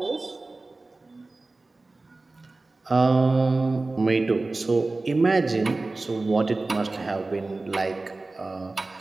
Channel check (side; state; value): left; quieter; 3.3 dB